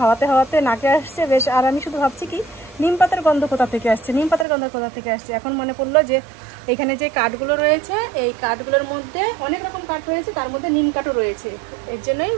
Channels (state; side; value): drops out; left; at 4.5 s